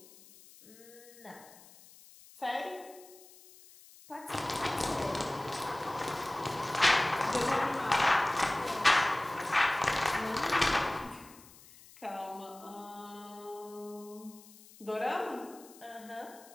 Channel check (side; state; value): left; noise; hiss, 22 dB below the sound